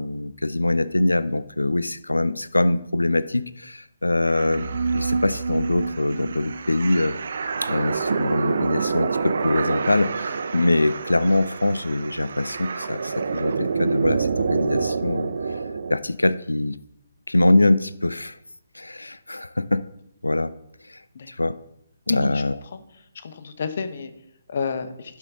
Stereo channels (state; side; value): inverted; both; correlation -0.93